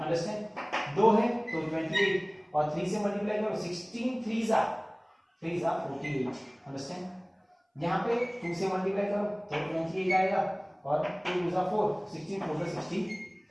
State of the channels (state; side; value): identical; both; correlation 1.00